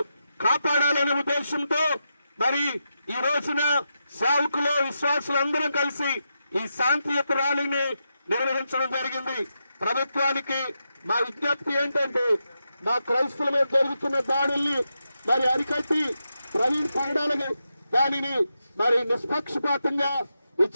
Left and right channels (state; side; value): inverted; both; correlation -0.86